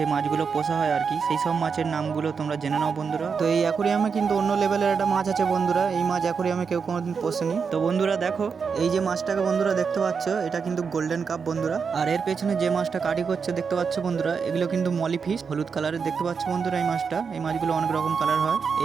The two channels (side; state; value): left; quieter; 5.8 dB